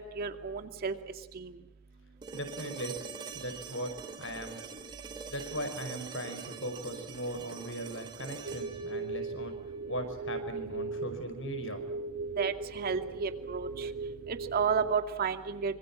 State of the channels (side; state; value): left; quieter; 3.8 dB